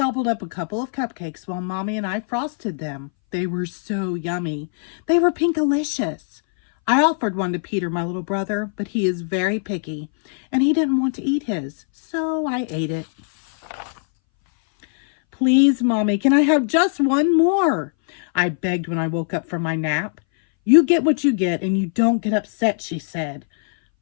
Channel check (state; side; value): silent; right; 62 dB below the other